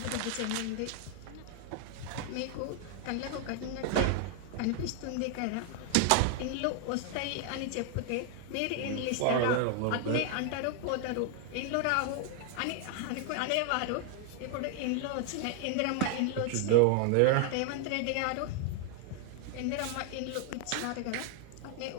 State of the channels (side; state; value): both; different; correlation 0.00